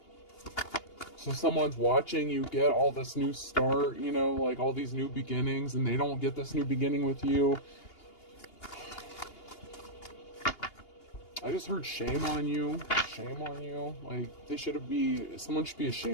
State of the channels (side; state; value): right; late; 2.8 ms